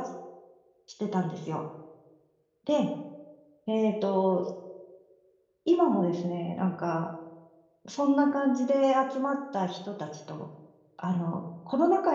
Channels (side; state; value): both; identical; correlation 1.00